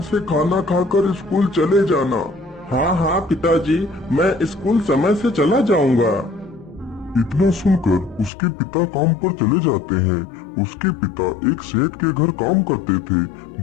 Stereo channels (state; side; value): drops out; right; at 8.3 s